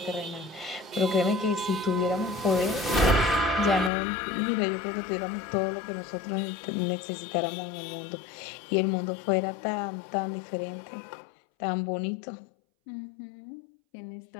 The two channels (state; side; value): drops out; right; at 3.9 s